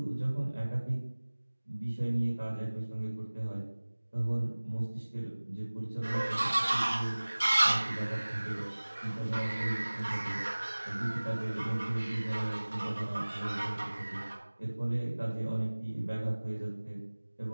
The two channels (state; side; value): inverted; both; correlation -1.00